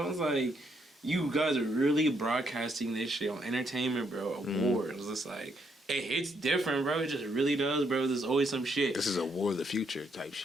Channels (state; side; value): normal; both; correlation 0.74